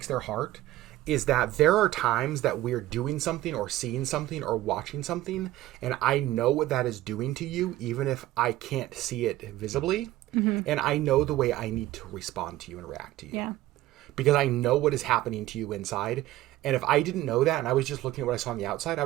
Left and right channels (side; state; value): left; quieter; 15.6 dB